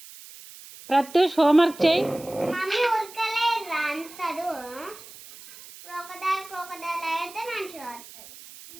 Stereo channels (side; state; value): right; noise; hiss, 18 dB below the sound